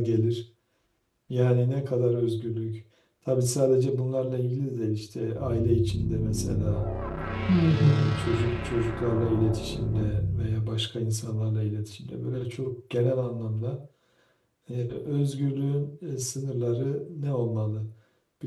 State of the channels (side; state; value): both; identical; correlation 1.00